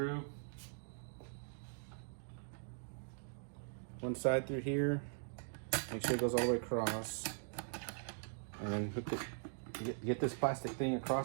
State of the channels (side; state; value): left; silent; digital silence